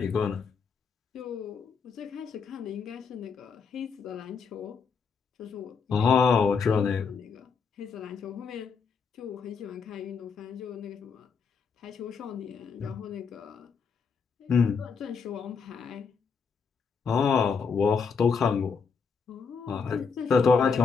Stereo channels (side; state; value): right; quieter; 5.6 dB